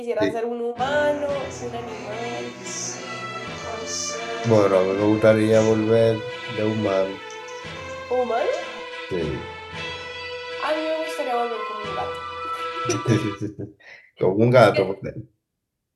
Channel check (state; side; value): identical; both; correlation 1.00